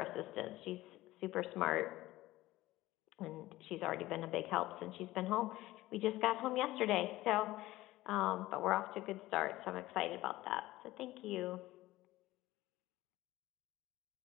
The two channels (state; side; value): quieter; right; 17.2 dB